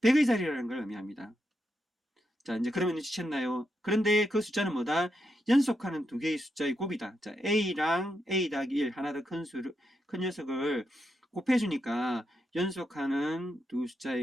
100의 자리라는 걸 의미합니다. 자, 이제 그러면 눈치챘나요? 그런데 그 숫자는 뭐다? 연속하는 두 개의 숫자의 곱이다. 자, A랑 A 더하기 1, 하나 더 큰 녀석을 곱해주니까 연속하는 두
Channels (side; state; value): both; normal; correlation 0.83